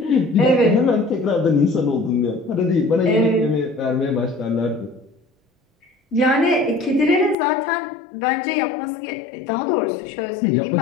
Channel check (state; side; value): drops out; right; at 7.4 s